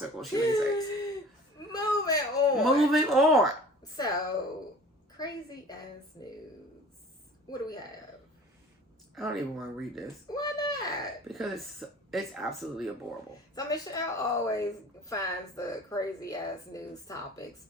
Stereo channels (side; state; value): both; normal; correlation 0.45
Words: She lays eggs. Moving on. So, crazy ass news. What do we have? I don't even want to read this. Why not? Because it's absolutely adorable. So Michelle always finds the crazy ass news topics